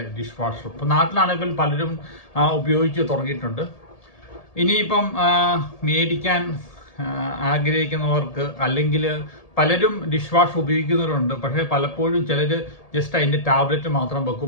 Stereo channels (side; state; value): right; late; 1.8 ms